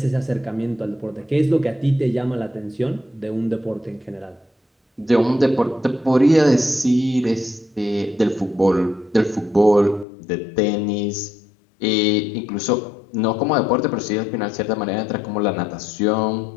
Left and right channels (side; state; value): right; drops out; at 10.1 s